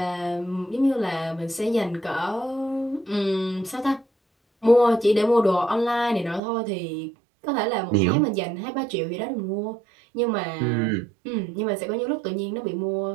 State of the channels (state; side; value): drops out; left; at 6.4 s